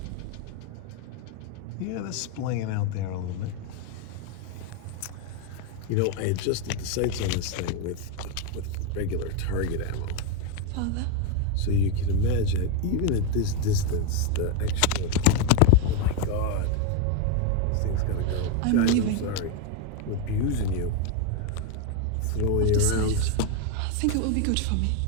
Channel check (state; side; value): different; both; correlation 0.02